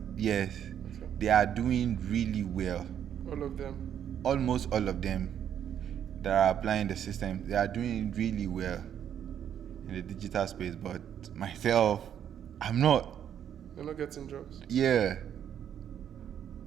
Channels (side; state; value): left; quieter; 9.4 dB